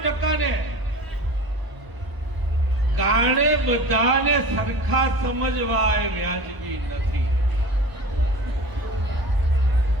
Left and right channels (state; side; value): late; left; 1.0 ms